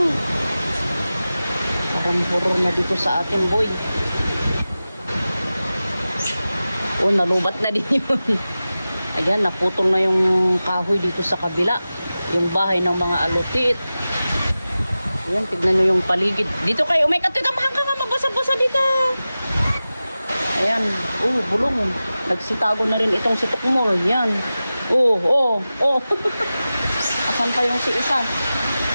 Parang horror na dito sa atin, boy. Oh, nalubat na din yun. Ayan, naputol na yung kahoy dito sa kabila. Yung bahay ng mga alutit. Ayan, tignan nyo yung paligid. Dito kayo, may katitamahan ka nga, mabasa-basa dito. Ayan, bulong. Nagsitago na rin itong si Tukmol. Yan. Asan pa yung si isa?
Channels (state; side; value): inverted; both; correlation -0.95